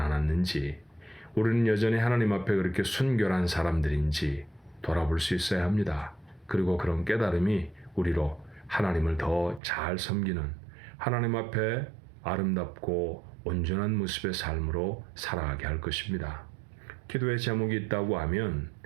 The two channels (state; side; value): drops out; left; at 9.6 s